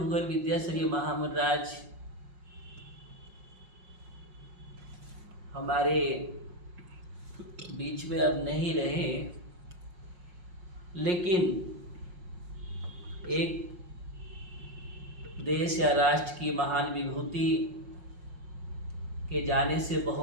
विद्यासागर जी महामंडराज हमारे बीच में अब नहीं रहे, लेकिन एक देश या राष्ट्र की महान विभूति के जाने से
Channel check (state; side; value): late; left; 5.5 ms